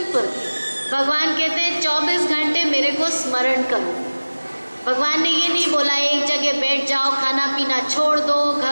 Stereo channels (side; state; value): both; inverted; correlation -1.00